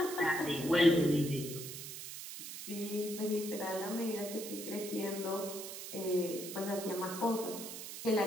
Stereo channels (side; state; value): right; noise; hiss, 9 dB below the sound